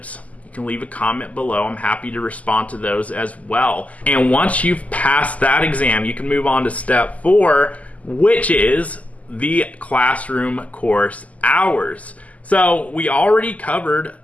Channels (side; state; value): right; late; 0.072 ms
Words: you can leave a comment below. I'm happy to respond to those as well. And once you've passed that exam, you can move on to step four, which is the classroom course hours. So we already covered